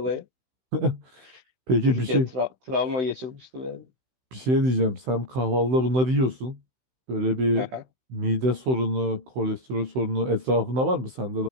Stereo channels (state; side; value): late; left; 16 ms